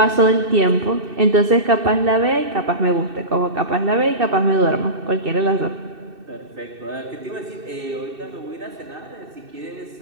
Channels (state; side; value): late; left; 2.6 ms